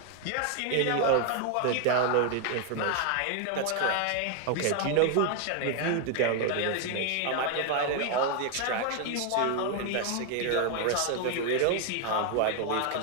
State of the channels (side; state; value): both; different; correlation 0.00